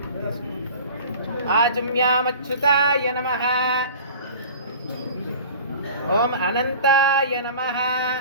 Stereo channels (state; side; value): inverted; both; correlation -0.41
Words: ఆజమ్యామచ్యుతాయ నమః. ఓం అనంతాయ నమః.